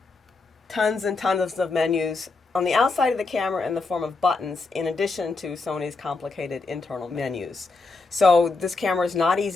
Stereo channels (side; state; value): right; quieter; 3.9 dB